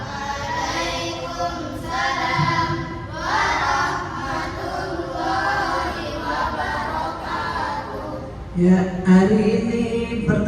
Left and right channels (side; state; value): both; identical; correlation 1.00